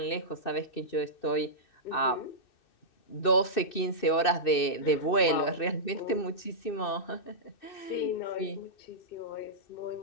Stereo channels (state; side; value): late; right; 2.6 ms